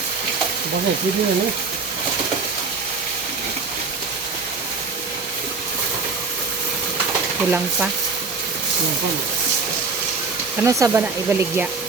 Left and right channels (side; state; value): left; quieter; 4.4 dB